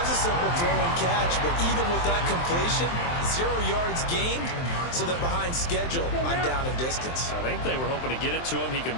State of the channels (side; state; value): right; late; 23 ms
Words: a simple throw and catch, but even with that completion, 0 yards gained, so they're behind schedule on down and distance. I think they were hoping to get it to him. He could